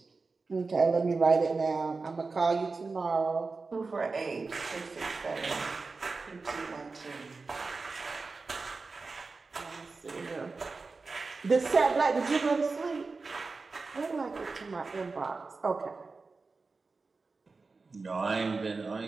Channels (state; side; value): quieter; left; 4.1 dB